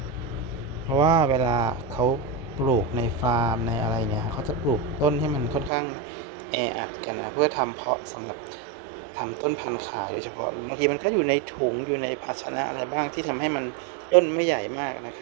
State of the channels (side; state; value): left; drops out; at 5.7 s